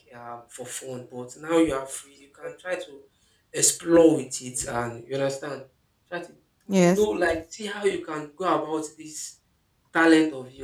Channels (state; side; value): identical; both; correlation 1.00